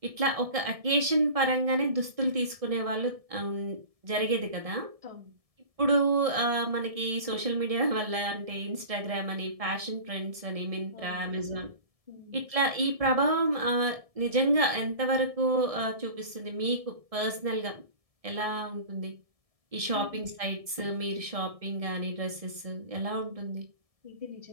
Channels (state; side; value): late; left; 1.7 ms